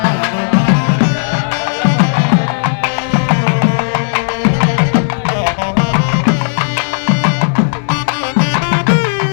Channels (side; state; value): right; silent; digital silence